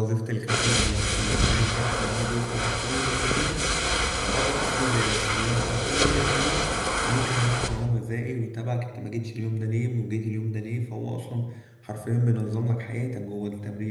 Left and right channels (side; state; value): both; identical; correlation 1.00